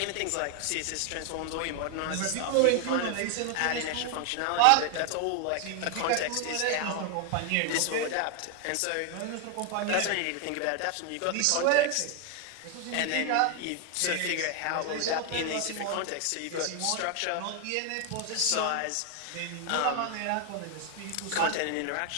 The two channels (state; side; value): different; both; correlation 0.00